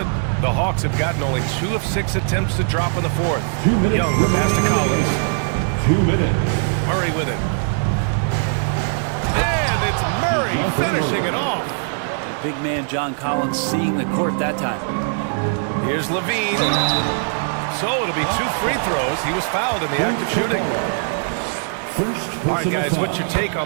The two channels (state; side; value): silent; left; digital silence